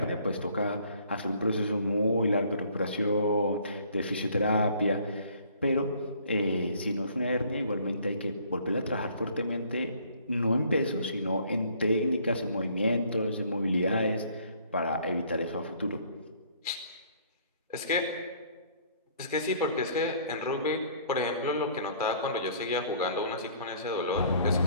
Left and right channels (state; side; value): inverted; both; correlation -0.58